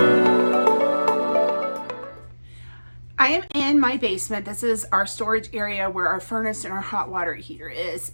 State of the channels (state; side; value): inverted; both; correlation -1.00